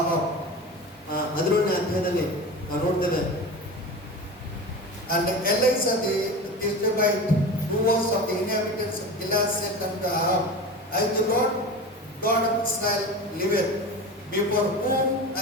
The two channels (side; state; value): both; normal; correlation 0.30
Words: 11ನೇ ಅಧ್ಯಾಯದಲ್ಲಿ ನಾವು ನೋಡ್ತೇವೆ, and Elisha the Tishbite, who was of the inhabitants of Gilead, said unto Ahab, I the Lord God of Israel liveth, before whom